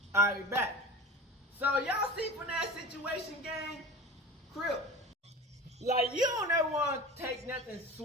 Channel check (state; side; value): normal; both; correlation 0.34